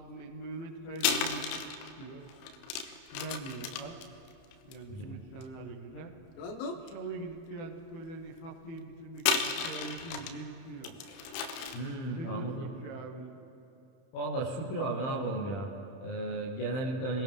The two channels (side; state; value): right; late; 31 ms